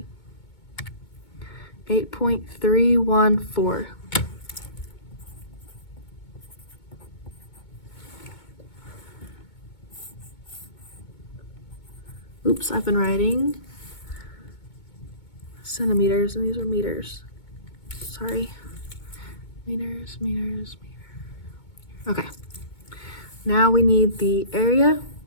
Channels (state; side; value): late; right; 2.2 ms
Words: 8.314. Oops, I've been writing centimeters and these are meters. Sorry. Meters. Okay. Now we need the area.